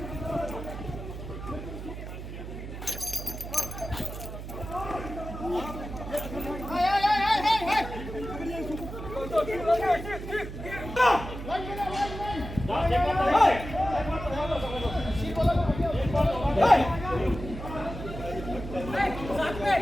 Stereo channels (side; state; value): right; noise; hum, 9 dB below the sound